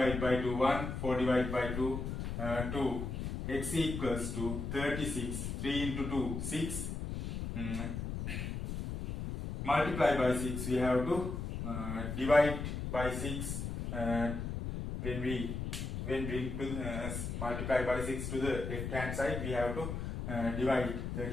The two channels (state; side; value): noise; left; rumble, 4 dB below the sound